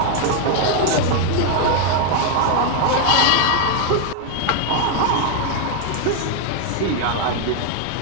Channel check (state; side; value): different; both; correlation 0.01